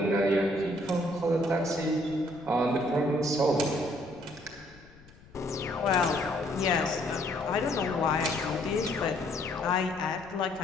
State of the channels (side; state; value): left; noise; rumble, 24 dB below the sound